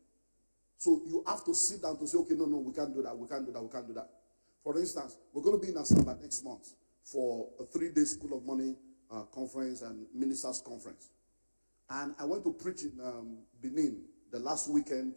So you have to sit down to say, okay, no, we can't do that, we can't do that, we can't do that. For instance, we're going to be in Asaba next month for a 3-day School of Money conference and ministers conference. And I went to preach in Benin the last weekend,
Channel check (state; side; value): inverted; both; correlation -1.00